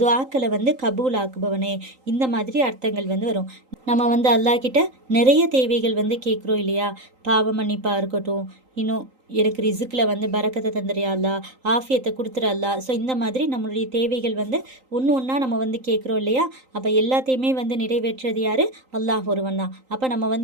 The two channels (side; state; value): left; late; 3.8 ms